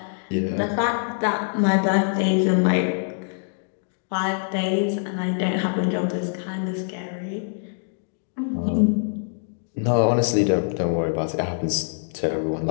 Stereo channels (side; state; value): right; silent; digital silence